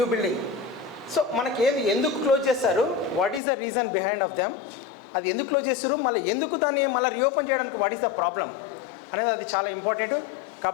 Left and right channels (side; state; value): right; drops out; at 3.4 s